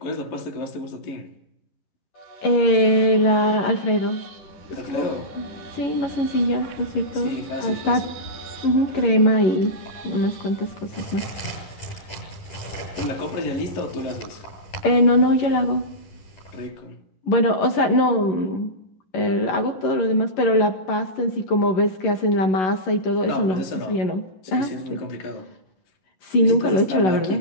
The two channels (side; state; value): right; late; 11 ms